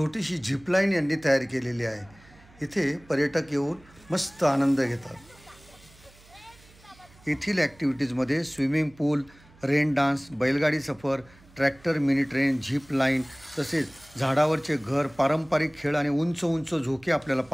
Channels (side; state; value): right; noise; hum, 26 dB below the sound